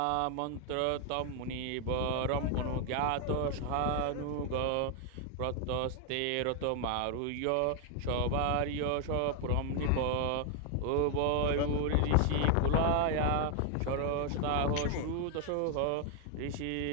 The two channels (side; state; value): both; different; correlation 0.00